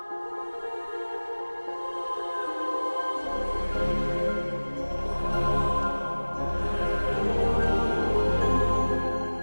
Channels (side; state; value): both; inverted; correlation -1.00